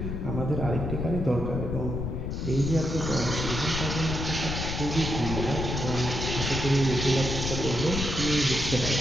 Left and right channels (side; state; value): left; noise; rumble, 3 dB below the sound